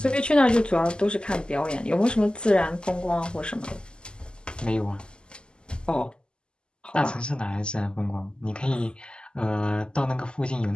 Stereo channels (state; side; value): late; right; 0.048 ms